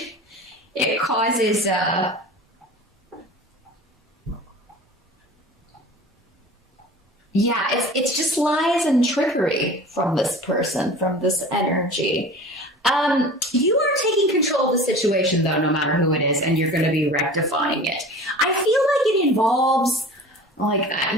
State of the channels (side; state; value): both; normal; correlation 0.39